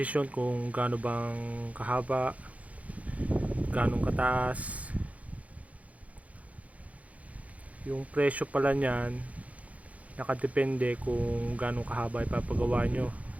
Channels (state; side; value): late; left; 0.068 ms